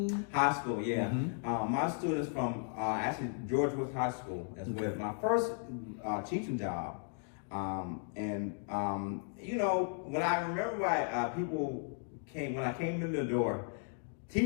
High school, yeah. Mm-hmm. My students from actually George Woods High School is with my first teaching job. When I remember when I came in the door,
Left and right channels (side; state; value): right; silent; 54 dB below the other